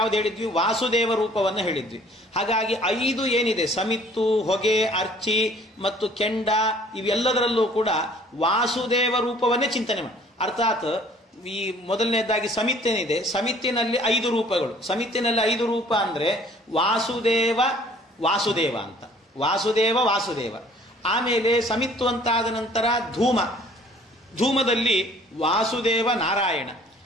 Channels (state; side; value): normal; both; correlation 0.54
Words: ಹೇಳಿದ್ವಿ? ವಾಸುದೇವ ರೂಪವನ್ನು ಹೇಳಿದ್ವಿ. ಹಾಗಾಗಿ 5 ಏನಿದೆ, ಸಮಿತ್ತು, ಹೊಗೆ, ಅರ್ಚಿ ಮತ್ತು ಕೆಂಡ, ಇವೆಲ್ಲದರಲ್ಲೂ ಕೂಡ ವಾಸುದೇವ ರೂಪವನ್ನೇ ಚಿಂತನೆ ಮಾಡಿ. ಅರ್ಥಾತ್ ಈ ಮೊದಲನೇದಾಗಿ ಸಮಿತ್ತೇನಿದೆ, ಸಮಿತ್ತಿನಲ್ಲಿ 5 ರೂಪಗಳು. ಸಮಿತ್ತಿನಲ್ಲಿ 5 ರೂಪ ಅಂದ್ರೆ ವಾಸುದೇವ ಅಂತ, ವಾಸುದೇವ. ಆಮೇಲೆ ಸಮಿತ್ತು ಅಂತಾದ ನಂತರ ಧೂಮದಲ್ಲಿ ವಾಸುದೇವ ನಾರಾಯಣ,